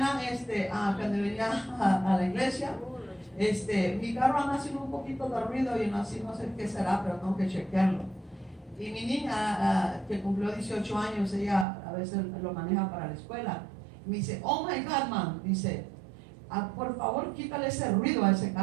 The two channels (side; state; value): left; drops out; at 11.7 s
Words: cuando venía a la iglesia, mi carro anda haciendo un poquito de ruido y no sé qué será, pero tengo que chequearlo. Y mi niña, que cumplió 18 años, ella a veces lo maneja para la escuela, me dice, oh my God, mom, dice, por favor quítale ese ruido a ese